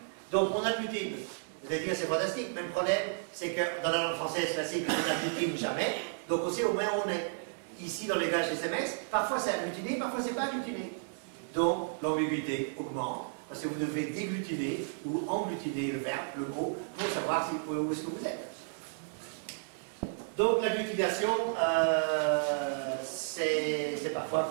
Donc, on agglutine. Vous allez dire, c'est fantastique. Même problème, c'est que dans la langue française classique, on n'agglutine jamais. Donc, on sait au moins où on est. Ici, dans les gages SMS, parfois c'est agglutiné, parfois c'est pas agglutiné. Donc, l'ambiguïté augmente, parce que vous devez déglutiner ou engglutiner le verbe, le mot, pour savoir où est-ce que vous êtes. Donc, l'agglutination, c'est parfois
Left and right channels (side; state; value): left; silent; digital silence